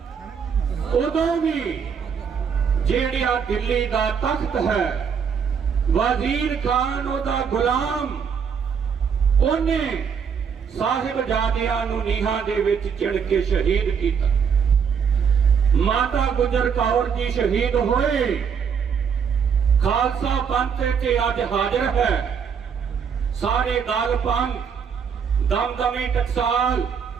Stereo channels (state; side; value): quieter; left; 6.8 dB